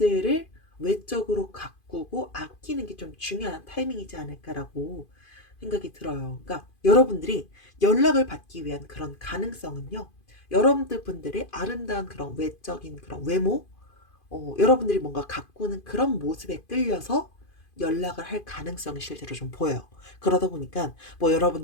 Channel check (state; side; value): late; right; 2.5 ms